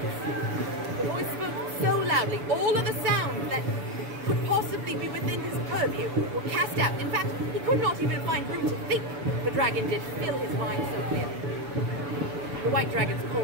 The voice spoke so loudly, all of the sounds that could possibly be within his purview were cast out. In fact, he could not even find room to think. The dragon did fill his mind so clearly. The white dragon's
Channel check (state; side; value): late; left; 7.0 ms